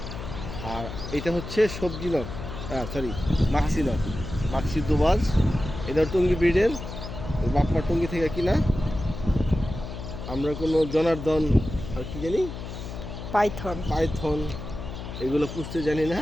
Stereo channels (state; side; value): noise; left; hum, 9 dB below the sound